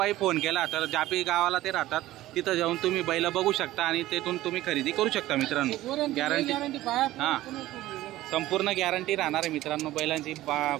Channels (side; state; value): left; quieter; 15.7 dB